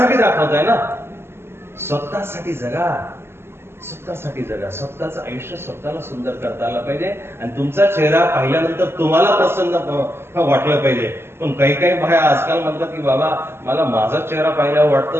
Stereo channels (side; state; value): left; late; 0.12 ms